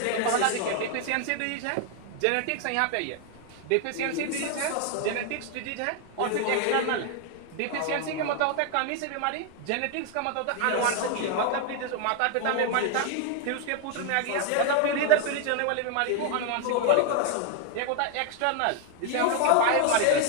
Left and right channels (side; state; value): both; different; correlation 0.00